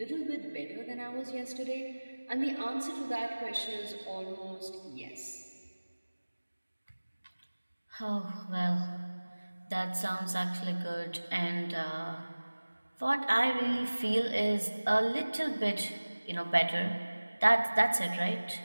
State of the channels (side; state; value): both; inverted; correlation -1.00